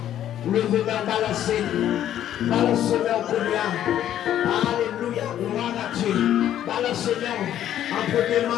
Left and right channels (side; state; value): right; quieter; 11.3 dB